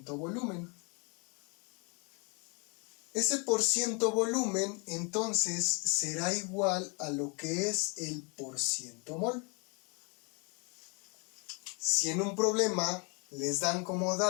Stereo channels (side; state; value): right; quieter; 33.2 dB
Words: volumen. Ese porciento volumen entonces será igual a lo que es el porciento mol. Si en un problema les dan como